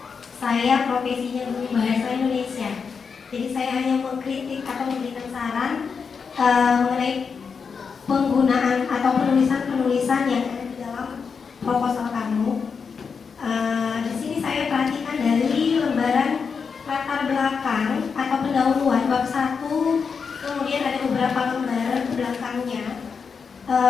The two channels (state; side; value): quieter; right; 5.7 dB